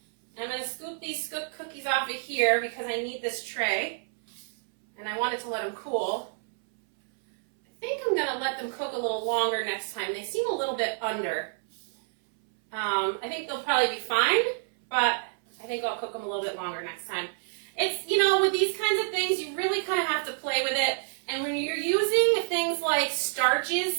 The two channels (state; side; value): silent; left; 59 dB below the other